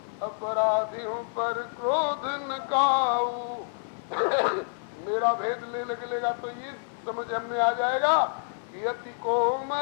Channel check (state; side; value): silent; right; 59 dB below the other